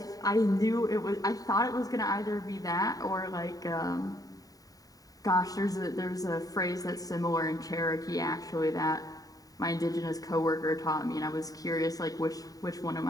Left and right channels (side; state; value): right; late; 0.18 ms